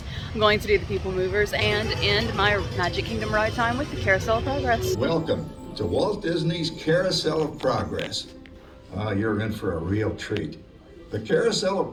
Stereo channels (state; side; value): identical; both; correlation 1.00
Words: I'm going to do the people movers and end my Magic Kingdom ride time with the Carousel of Progress. Welcome to Walt Disney's Carousel of Progress. You're in for a real treat. The Carousel of